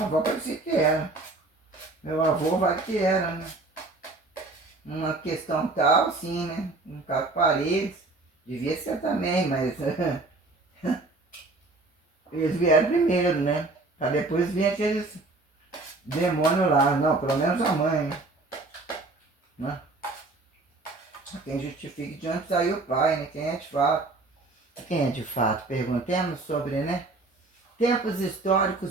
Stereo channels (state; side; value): quieter; left; 3.3 dB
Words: avô parecia que era. Meu avô vai que era, né? Uma questão tal, sim, né? Um caso paredes, devia ser também, mas eles vieram primeiro, né? Pra depois vir aqueles demônios lá. Não, pelo menos a mãe, né? Quem justifica de onde saiu o pai, né? Quem é de fato? Quem é de fato? Perguntemos sobre, né? Tempos